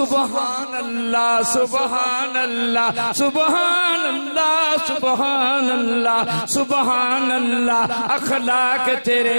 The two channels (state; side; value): inverted; both; correlation -1.00